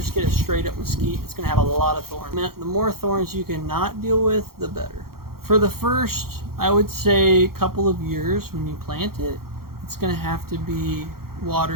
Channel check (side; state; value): left; late; 0.93 ms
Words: get a straight up mesquite, it's going to have a lot of thorns. The more thorns you can not deal with, the better. For the first, I would say, couple of years when you plant it, it's going to have to be